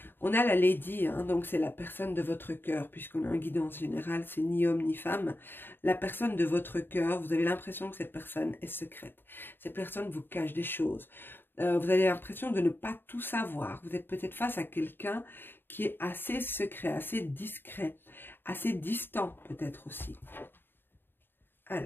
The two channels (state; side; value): late; right; 0.099 ms